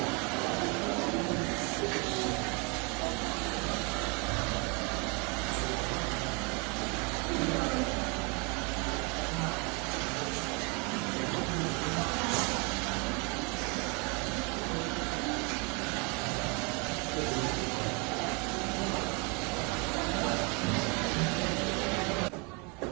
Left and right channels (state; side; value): quieter; left; 31.2 dB